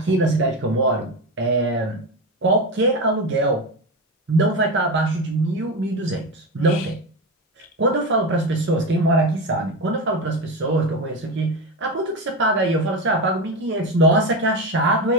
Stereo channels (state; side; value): normal; both; correlation 0.19